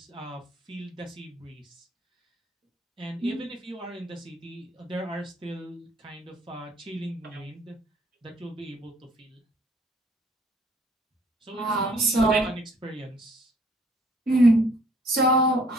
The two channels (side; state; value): both; normal; correlation 0.60